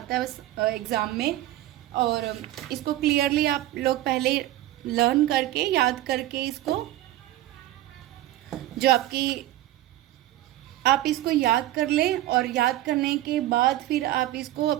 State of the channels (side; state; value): left; quieter; 15.0 dB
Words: है एग्जाम में, और इसको क्लियरली आप लोग पहले लर्न करके याद करके इसको, जो आप इसको याद कर लें, और याद करने के बाद फिर आप इसको